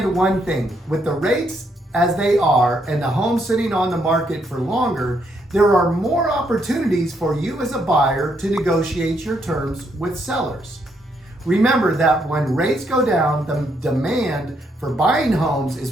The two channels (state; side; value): normal; both; correlation 0.75